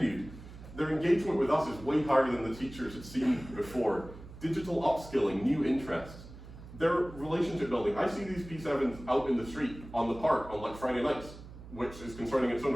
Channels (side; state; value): right; noise; hum, 16 dB below the sound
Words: Their engagement with us is way higher than the teachers had seen before. Digital upskilling, new interests. Their relationship building. I see these P7s out in the street, on the park, on like Friday nights, which is concerning in its own